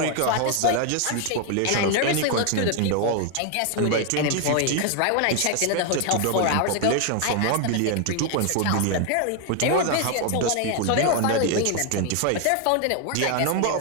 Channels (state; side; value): different; both; correlation 0.01